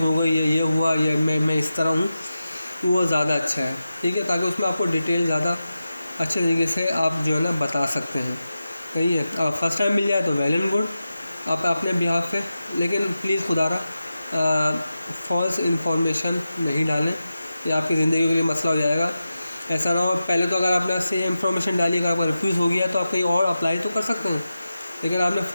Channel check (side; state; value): both; inverted; correlation -0.92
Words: हो गई, ये हुआ, या मैं इस तरह हूँ, वो ज़्यादा अच्छा है, ठीक है, ताकि उसमें आपको डिटेल ज़्यादा अच्छे तरीके से आप जो है ना बता सकते हैं। सही है, फर्स्ट टाइम मिल जाए तो वेल एंड गुड आप अपने बिहाफ पे, लेकिन प्लीज़ खुदारा फॉल्स इन्फॉर्मेशन नहीं डालें, ये आपकी ज़िंदगी के लिए मसला हो जाएगा। ऐसा ना हो पहले तो अगर आपने सेम इन्फॉर्मेशन डाली, अगर आपका रिफ्यूज़ हो गया तो आप कहीं और अप्लाई तो कर सकते हैं, लेकिन आपने